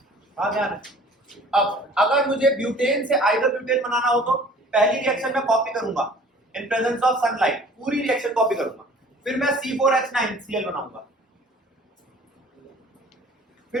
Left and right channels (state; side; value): normal; both; correlation 0.49